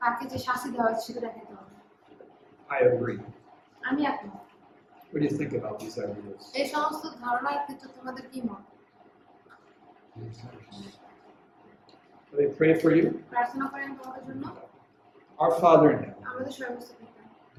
তাকে যে শাস্তি দেওয়া হয়েছে সেটা দেখাইতে হবে। I agree. আমি একমত। What do you think about these ideas? এই সমস্ত ধারণার ক্ষেত্রে তোমাদের কি মত? Will they pray for you? প্রার্থনা করেন তোমাদের জন্য। Our Father in heaven, আমাদের সর্বস্ব পিতা,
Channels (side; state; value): both; identical; correlation 1.00